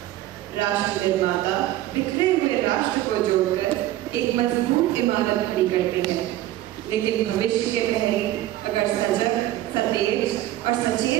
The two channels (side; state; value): left; quieter; 14.5 dB